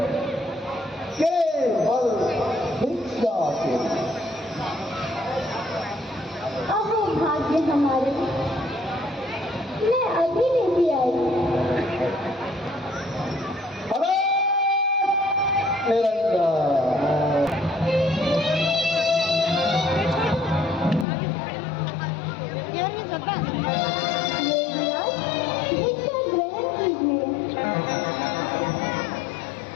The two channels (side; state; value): right; drops out; at 21.1 s